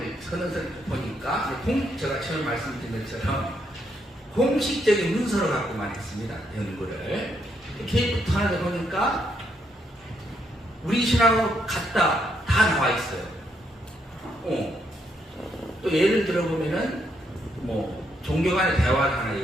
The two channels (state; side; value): normal; both; correlation 0.76